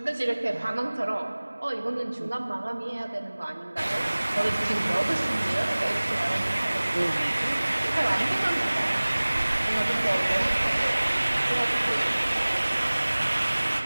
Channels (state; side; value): inverted; both; correlation -1.00